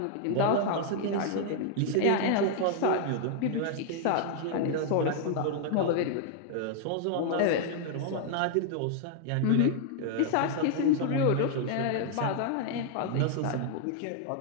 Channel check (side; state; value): both; different; correlation 0.00